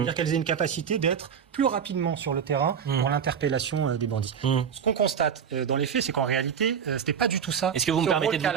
qu'elles aient une capacité d'être plus rapidement sur le terrain pour l'interpellation des bandits. Ce qu'on constate dans les faits, c'est qu'en réalité, c'était pas du tout ça. Est-ce que vous me permettez de vous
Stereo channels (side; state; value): left; quieter; 7.5 dB